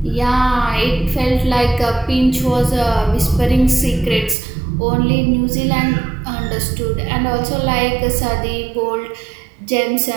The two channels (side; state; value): left; drops out; at 4.4 s